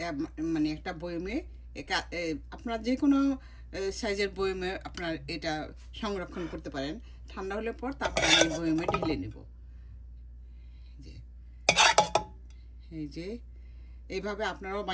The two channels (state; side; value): identical; both; correlation 1.00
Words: মানে একটা বয়মে আপনার যে কোনো সাইজের বয়মে আপনার এটা সংরক্ষণ করতে পারেন। ঠান্ডা হলে পর তারপর আমি বয়মে ঢেলে নেব। যে এই যে এইভাবে আপনারাও